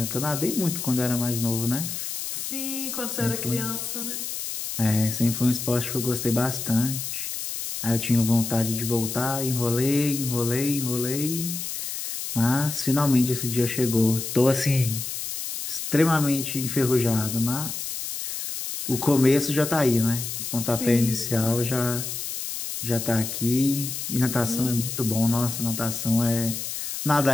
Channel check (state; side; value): noise; left; hiss, 5 dB below the sound